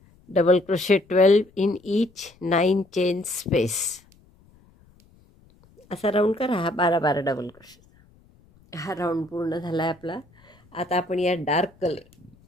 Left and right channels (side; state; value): left; noise; rumble, 30 dB below the sound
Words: Double crochet 12 in each 9 chain space. असा राऊंड करा हा 12 डबल क्रोशे. हा राऊंड पूर्ण झाला आहे आपला. आता आपण या